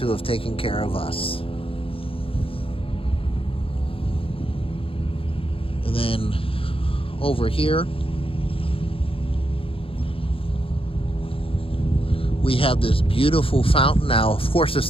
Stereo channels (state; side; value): late; right; 0.27 ms